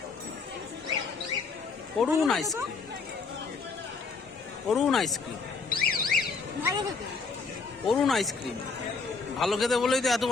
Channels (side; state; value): right; quieter; 4.6 dB